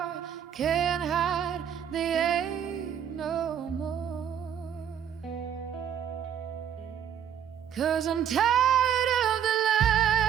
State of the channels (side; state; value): left; quieter; 9.0 dB